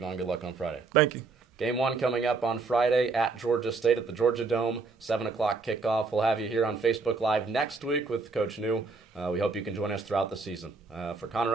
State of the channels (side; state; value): left; quieter; 4.2 dB